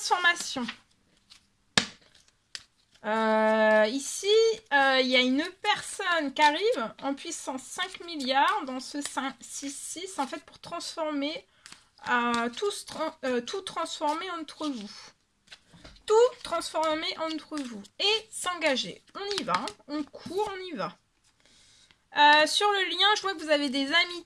Ici, il y a une personne qui arrive en puissance 5 milliards dans ce 6-6 en fait pour transformer, tout transformer entre vous. Tout transformer entre vous et s'engager. On y va, hein. On court, on y va. Sur le lien, je vois que vous avez des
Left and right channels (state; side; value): identical; both; correlation 1.00